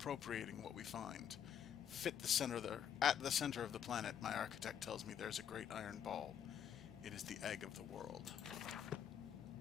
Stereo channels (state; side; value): quieter; right; 8.8 dB